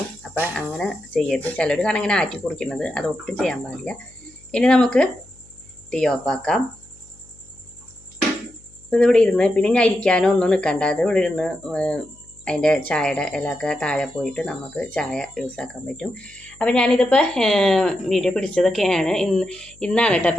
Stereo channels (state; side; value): noise; left; hum, 27 dB below the sound